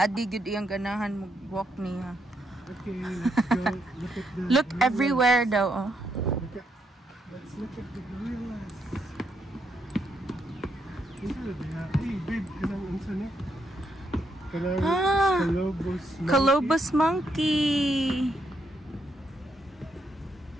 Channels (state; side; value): normal; both; correlation 0.78